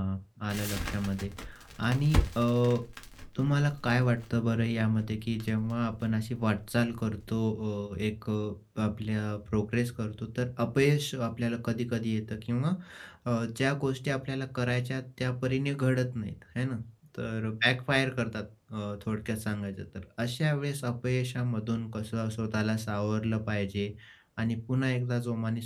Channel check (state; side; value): identical; both; correlation 1.00